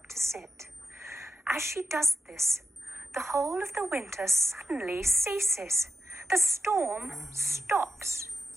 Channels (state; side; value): normal; both; correlation 0.92